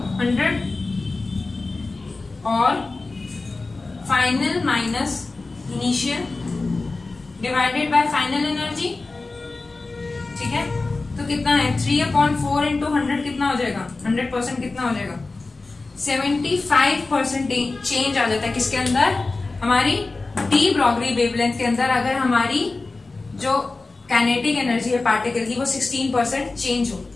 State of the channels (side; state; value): right; quieter; 3.5 dB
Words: 100 और final minus initial divided by final energy. ठीक है, तो कितना है 3 अपॉन 4 इंटू 100 कितना हो जाएगा, 100% कितना हो जाएगा, 75% चेंज आ जाता है किसके अंदर, हमारी डी ब्रॉगली वेवलेंथ के अंदर। अगर हमारी जो काइनेटिक एनर्जी है पार्टिकल की वो 16% चेंज हो,